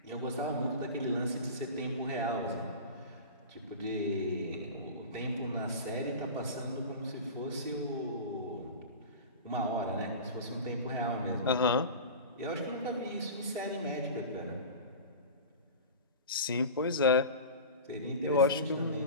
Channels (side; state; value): both; inverted; correlation -0.32